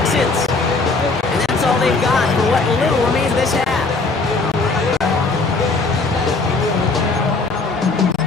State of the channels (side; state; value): right; quieter; 3.7 dB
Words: And that's all they've got for what little remains of this half.